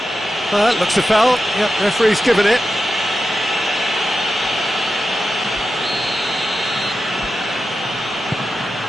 Looks a foul. Yep, referee's given it.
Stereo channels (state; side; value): normal; both; correlation 0.90